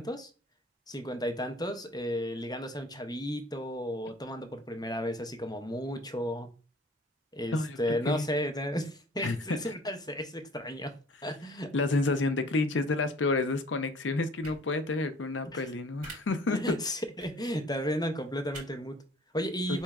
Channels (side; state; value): both; normal; correlation 0.52